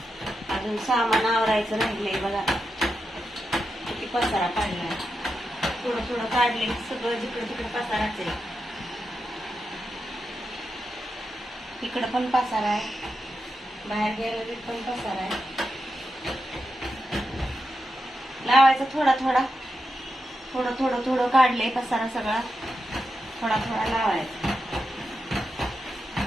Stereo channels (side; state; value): both; normal; correlation 0.88